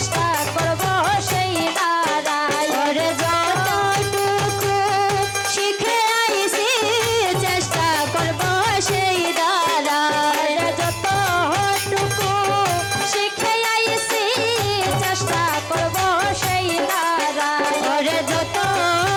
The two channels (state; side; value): identical; both; correlation 1.00